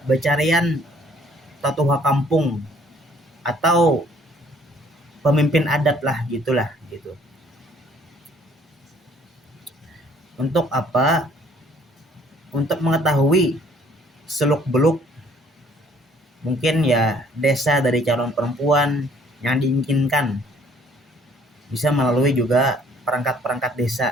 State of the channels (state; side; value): normal; both; correlation 0.60